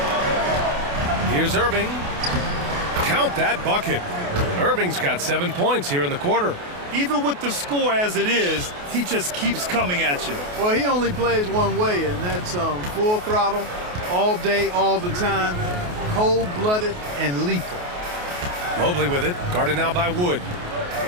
Here's Irving. Count that bucket. Irving's got 7 points here in the quarter. Even with the score as it is, he just keeps coming at you. Well, he only plays one way, and that's full throttle, all day, all the time, cold-blooded and lethal. Mobley with it, guarded now by Wood.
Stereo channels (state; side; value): late; left; 28 ms